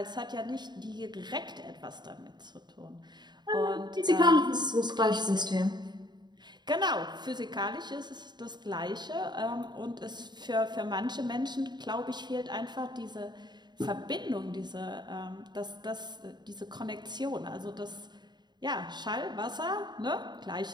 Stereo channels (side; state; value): left; late; 0.21 ms